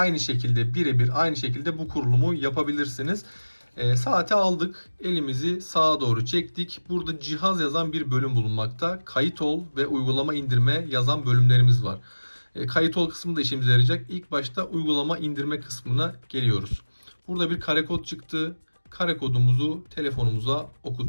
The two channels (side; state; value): both; inverted; correlation -1.00